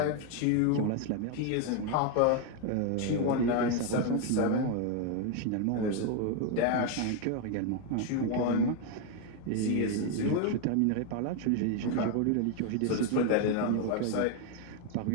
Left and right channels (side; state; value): both; different; correlation 0.01